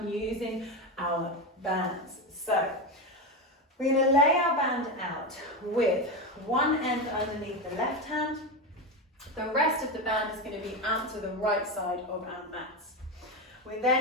using our bands. So we're going to lay our band out with one end underneath the left hand. The rest of the band is going to be out to the right side of our mats. We're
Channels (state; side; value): normal; both; correlation 0.16